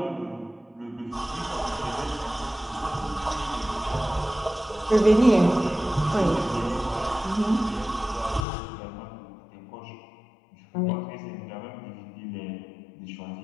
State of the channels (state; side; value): drops out; right; at 8.5 s